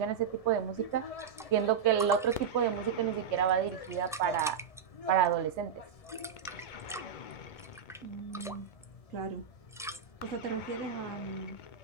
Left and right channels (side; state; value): left; quieter; 7.3 dB